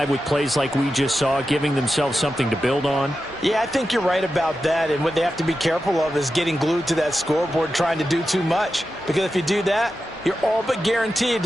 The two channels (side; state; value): both; normal; correlation 0.91